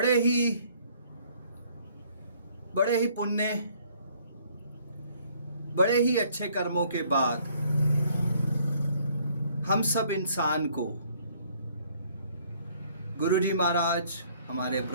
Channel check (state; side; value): inverted; both; correlation -0.62